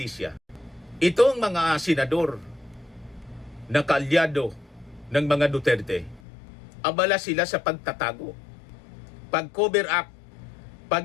itong mga senador na kaalyado ng mga Duterte, abala sila sa pagtatago, pag-cover up,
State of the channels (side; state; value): right; drops out; at 6.2 s